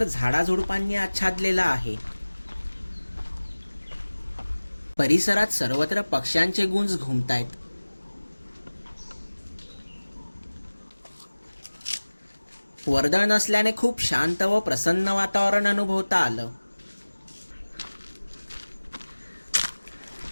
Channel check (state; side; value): inverted; both; correlation -1.00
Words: झाडाझुडपांनी आच्छादलेला आहे. परिसरात सर्वत्र पक्ष्यांचे गुंज घुमतायत. वर्दळ नसल्याने खूप शांत व प्रसन्न वातावरण अनुभवता आलं.